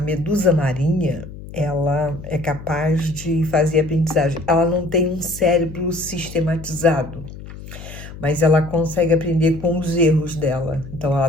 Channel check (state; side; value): noise; left; hum, 14 dB below the sound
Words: medusa marinha, ela é capaz de fazer aprendizagem. Ela não tem um cérebro sistematizado, mas ela consegue aprender com os erros dela. Então ela